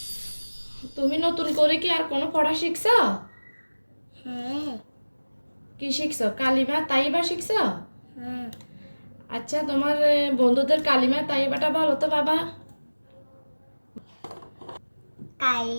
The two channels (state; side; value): inverted; both; correlation -1.00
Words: তুমি নতুন করে কি আর কোনো পড়া শিখছো? হ্যাঁ কি শিখছো? কালিমা তাইবা শিখছো? হ্যাঁ আচ্ছা, তোমার বন্ধুদের কালিমা তাইবাটা বলো তো বাবা।